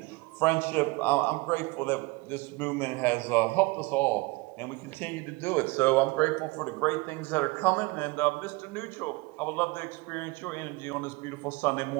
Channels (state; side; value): quieter; left; 24.0 dB